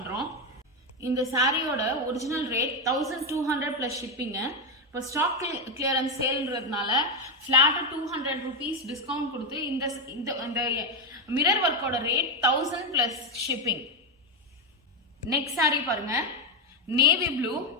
இந்த சாரியோட ஒரிஜினல் ரேட் 1200 பிளஸ் ஷிப்பிங்க. இப்போ ஸ்டாக் கிளியரன்ஸ் சேல்ன்றதுனால ஃபிளாட்டா 200 rupees டிஸ்கவுண்ட் கொடுத்து இந்த மிரர் ஒர்க்கோட rate 1000 plus shipping. Next sari பாருங்க, நேவி ப்ளூ,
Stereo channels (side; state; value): both; normal; correlation 0.08